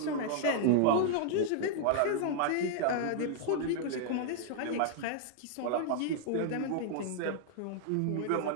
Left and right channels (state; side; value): different; both; correlation -0.01